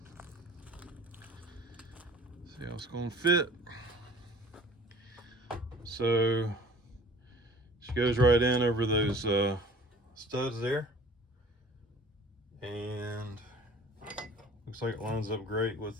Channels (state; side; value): normal; both; correlation 0.48